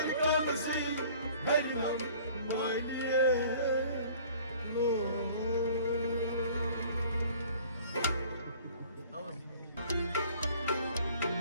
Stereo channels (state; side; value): inverted; both; correlation -0.51